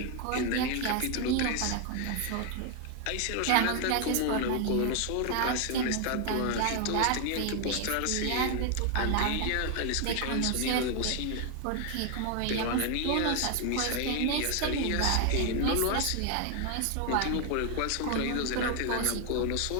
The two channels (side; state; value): both; different; correlation 0.01